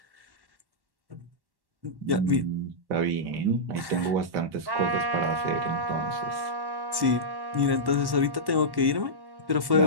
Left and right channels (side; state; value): left; late; 1.1 ms